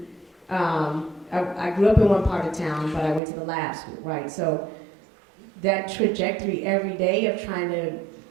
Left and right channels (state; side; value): drops out; left; at 3.2 s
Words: I grew up in one part of town, but I went to the lab school, right? So that trajectory every day of trying to,